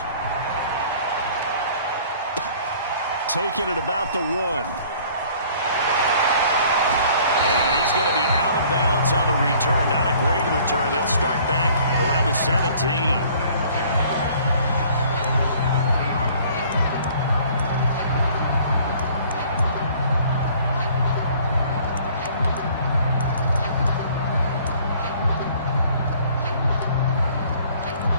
Taking it about the 1. And he's going to be out of bounds on the return. Not a great return. They'll start back around the 17.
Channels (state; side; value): inverted; both; correlation -0.54